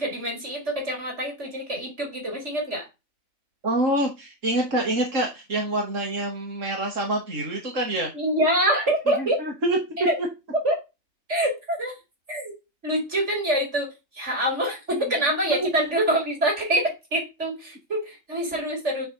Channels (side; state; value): left; late; 3.4 ms